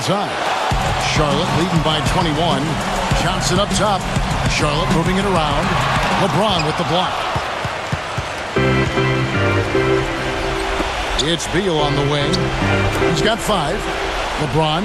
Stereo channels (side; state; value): both; identical; correlation 1.00